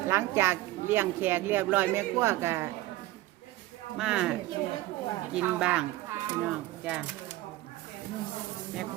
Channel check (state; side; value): quieter; left; 17.1 dB